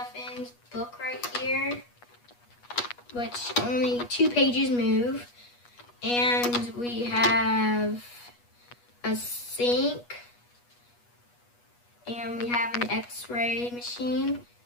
book right here, which only 2 pages move. And we have a sink. And we have an x-ray machine.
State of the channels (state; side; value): late; right; 8.3 ms